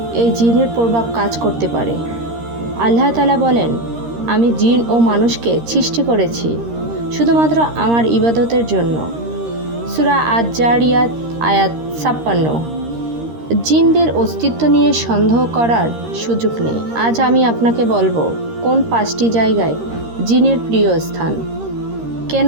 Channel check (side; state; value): left; late; 13 ms